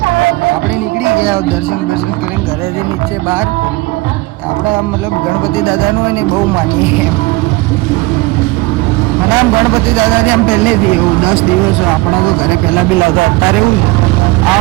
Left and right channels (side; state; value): left; quieter; 21.1 dB